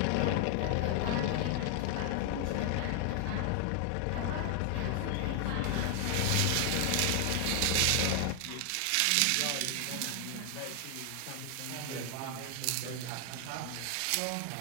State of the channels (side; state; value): both; different; correlation 0.00